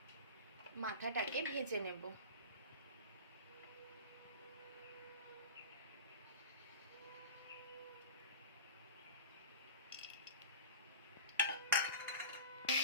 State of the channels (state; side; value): inverted; both; correlation -0.31